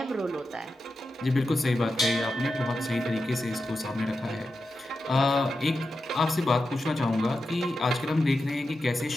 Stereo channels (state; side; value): normal; both; correlation 0.90